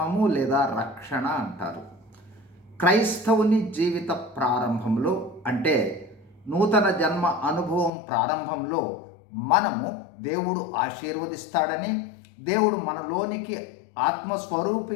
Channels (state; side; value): drops out; right; at 7.9 s